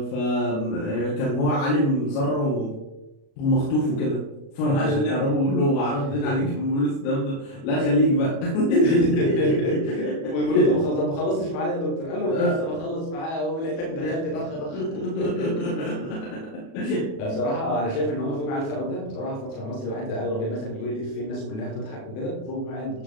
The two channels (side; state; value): right; late; 36 ms